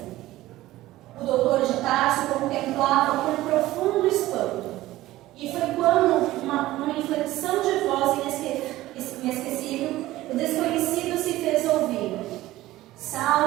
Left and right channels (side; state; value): left; quieter; 16.5 dB